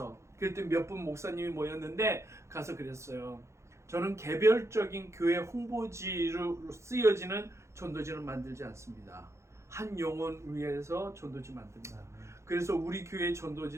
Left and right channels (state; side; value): late; left; 0.14 ms